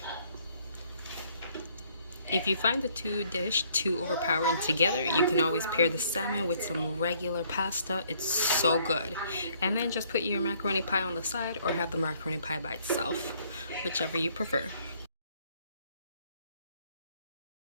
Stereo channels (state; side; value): inverted; both; correlation -0.64